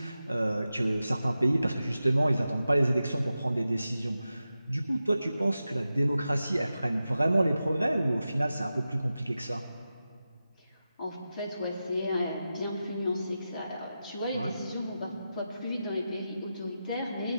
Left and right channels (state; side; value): inverted; both; correlation -0.92